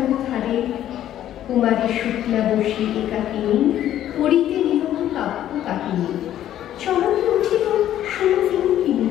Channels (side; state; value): right; quieter; 11.8 dB